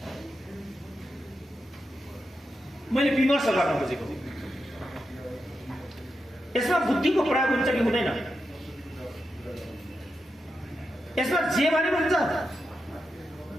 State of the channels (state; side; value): normal; both; correlation 0.88